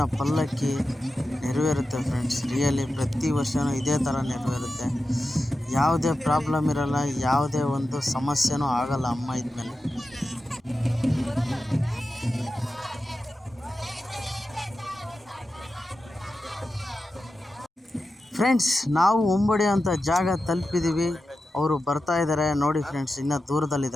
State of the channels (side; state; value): both; normal; correlation 0.92